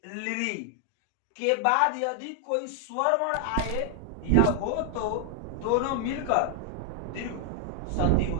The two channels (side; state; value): both; different; correlation 0.00